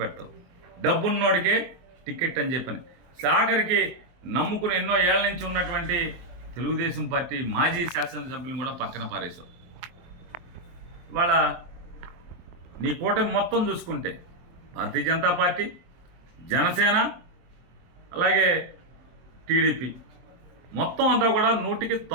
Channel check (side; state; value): left; late; 23 ms